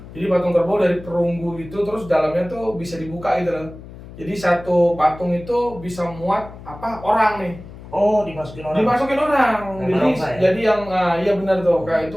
Jadi patung kerbau dari perunggu itu terus dalamnya tuh bisa dibuka gitu loh. Jadi satu patung itu bisa muat orang nih. Oh, dimasukin orang. Dimasukin orang. Jadi yang iya benar tuh. Kayak itu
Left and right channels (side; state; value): left; noise; hum, 16 dB below the sound